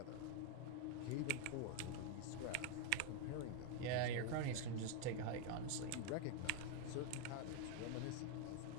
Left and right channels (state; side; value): different; both; correlation 0.00